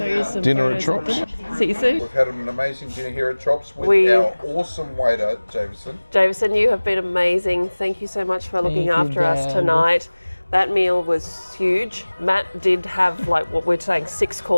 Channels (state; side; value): inverted; both; correlation -1.00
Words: you some dinner at photos Chops. See you soon. We've had an amazing dinner here at Chops with our awesome waiter, Jameson. Jameson, you have been amazing. Thank you so much for looking after us tonight. That meal was huge. Matt did have what we're saying 6